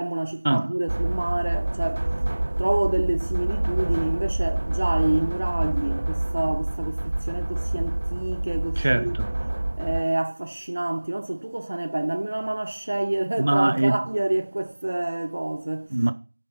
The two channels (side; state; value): both; inverted; correlation -1.00